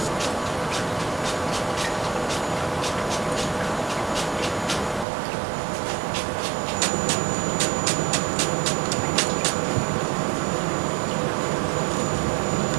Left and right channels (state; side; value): drops out; left; at 5.1 s